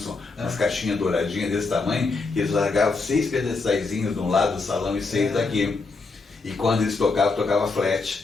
umas caixinhas douradinhas desse tamanho, e eles largavam 6 pedestalzinhos de um lado do salão e 6 daqui. E quando eles tocavam, tocava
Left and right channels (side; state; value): right; quieter; 3.9 dB